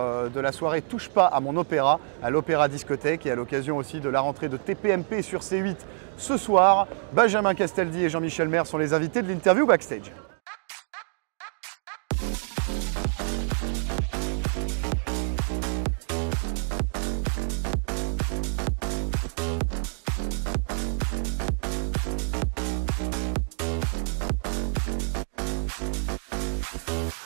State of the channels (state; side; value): silent; left; digital silence